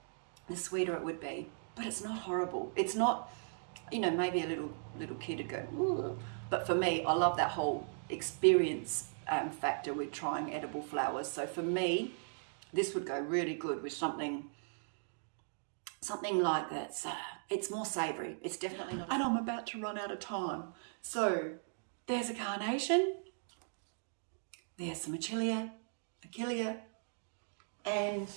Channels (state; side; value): silent; left; digital silence